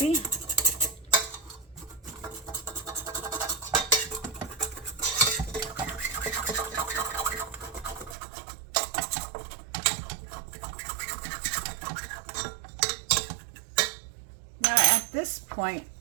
Now at this point,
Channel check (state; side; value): drops out; left; at 8.2 s